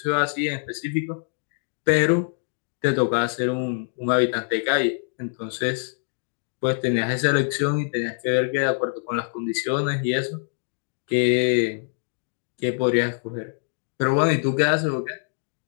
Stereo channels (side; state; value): right; silent; digital silence